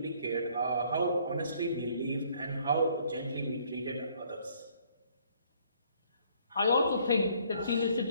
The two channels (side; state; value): both; inverted; correlation -0.63